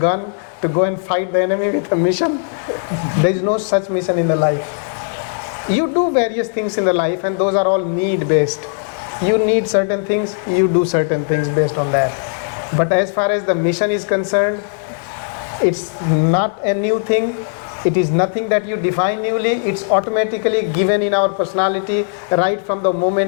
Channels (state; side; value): silent; right; digital silence